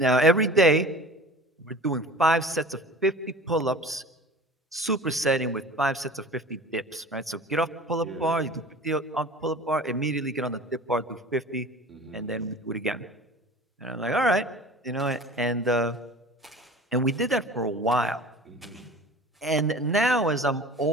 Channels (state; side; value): normal; both; correlation 0.40